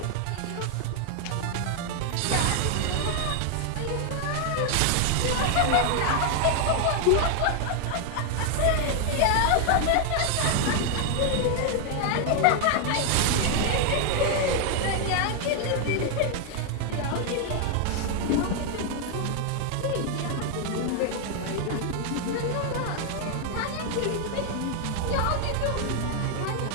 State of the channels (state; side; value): different; both; correlation 0.00